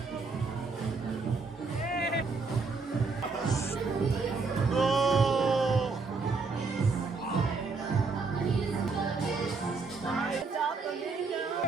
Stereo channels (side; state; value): left; quieter; 4.3 dB